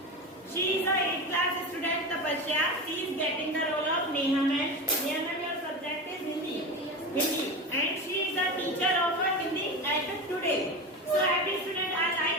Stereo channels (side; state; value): both; normal; correlation 0.24